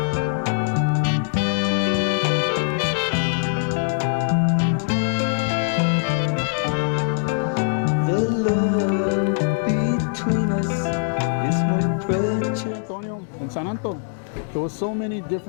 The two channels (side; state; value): right; silent; digital silence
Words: In San Antonio, there were so many